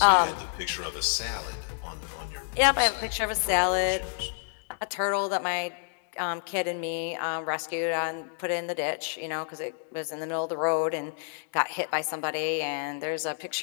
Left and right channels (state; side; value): silent; right; digital silence